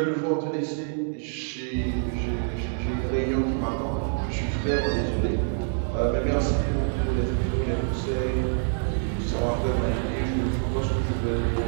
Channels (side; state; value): left; silent; digital silence